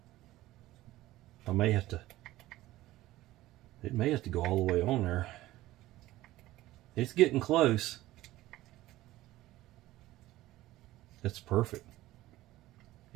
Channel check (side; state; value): left; quieter; 16.4 dB